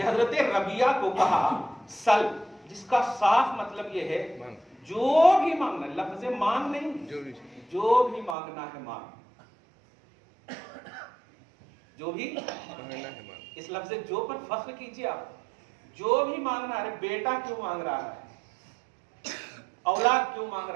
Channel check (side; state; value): left; drops out; at 8.3 s